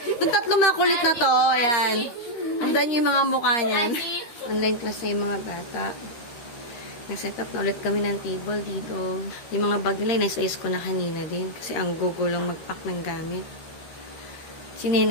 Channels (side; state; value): right; late; 13 ms